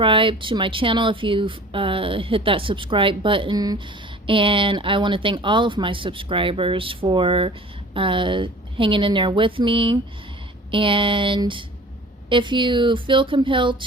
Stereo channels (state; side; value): normal; both; correlation 0.44